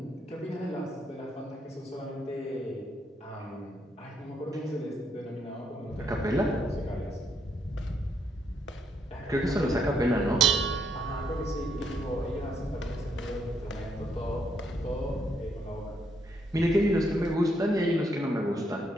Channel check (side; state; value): both; normal; correlation 0.75